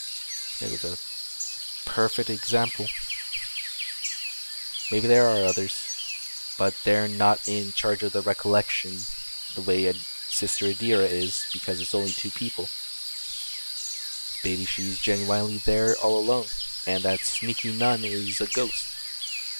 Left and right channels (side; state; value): both; inverted; correlation -1.00